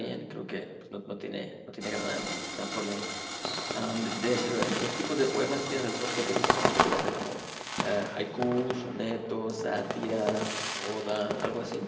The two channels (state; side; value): identical; both; correlation 1.00